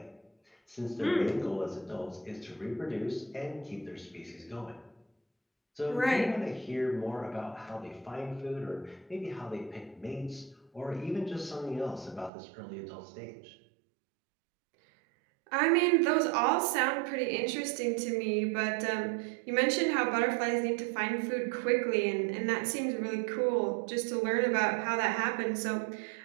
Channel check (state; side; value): drops out; left; at 12.3 s